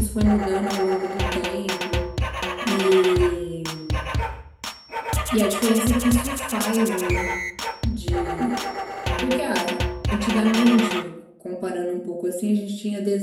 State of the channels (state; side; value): identical; both; correlation 1.00